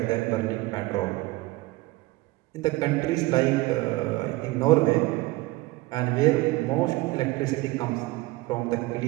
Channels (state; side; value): quieter; left; 20.2 dB